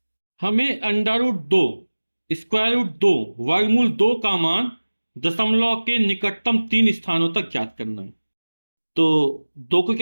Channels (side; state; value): both; inverted; correlation -1.00